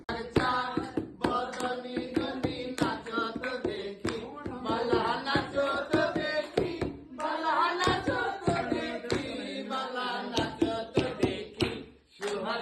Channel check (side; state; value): both; identical; correlation 1.00